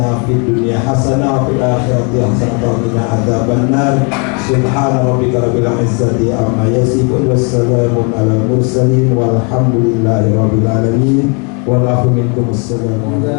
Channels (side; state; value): right; quieter; 35.1 dB